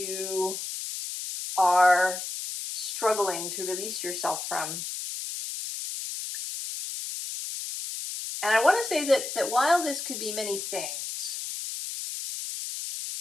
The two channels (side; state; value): left; noise; hiss, 6 dB below the sound